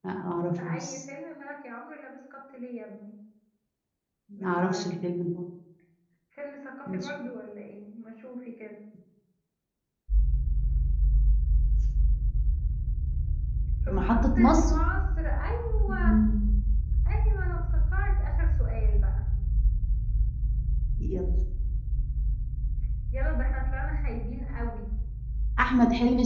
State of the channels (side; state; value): both; identical; correlation 1.00